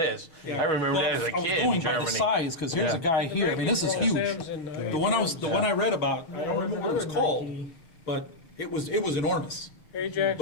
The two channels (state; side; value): late; right; 6.3 ms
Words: I remember Well, that as a I was kid going in by the Germany. size, because here's Yeah. a guy here. I mean, this is huge. The one I read about, I don't remember what it was called, but it was enormous. Ajax,